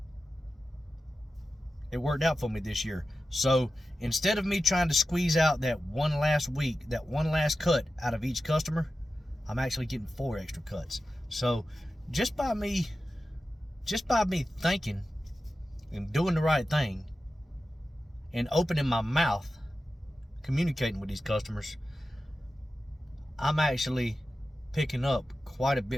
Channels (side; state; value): both; normal; correlation 0.93